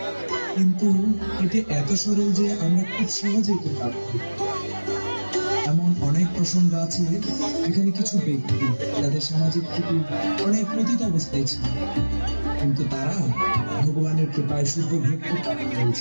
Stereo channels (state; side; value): inverted; both; correlation -1.00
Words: কিন্তু এটি এত সরল যে আমরা খুব সহজেই এটি লাভ করি। এমন অনেক প্রসঙ্গ আছে এখানে কিছু ব্যক্তি যাদের সামাজিক থেকে অনেক পতিত অবস্থায় ছিল, কিন্তু তারা ভগবানের কৃপায় শুদ্ধ ভক্তি প্রাপ্ত